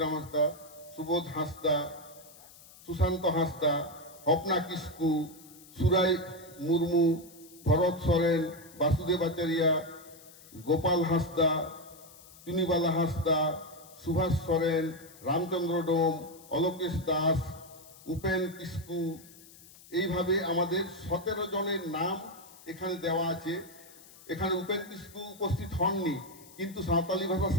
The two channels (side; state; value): left; noise; hiss, 21 dB below the sound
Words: হাঁসদা, সুবোধ হাঁসদা, সুশান্ত হাঁসদা, হপনা কিস্কু, সুরাই মুর্মু, ভরত সরেন, বাসুদেব আচারিয়া, গোপাল হাঁসদা, চুনিবালা হাঁসদা, সুভাষ সরেন, রামচন্দ্র ডোম, অলোকেশ দাস, উপেন কিস্কু। এইভাবে আমাদের 17 জনের নাম এখানে দেওয়া আছে। এখানে উপেন কিস্কু উপস্থিত হননি, কিন্তু সাঁওতালি ভাষা